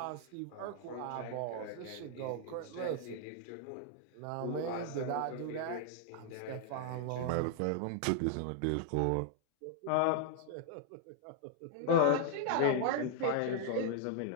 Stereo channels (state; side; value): different; both; correlation 0.00